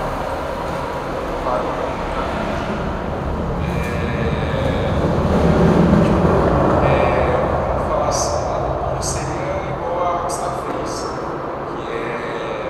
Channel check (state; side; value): identical; both; correlation 1.00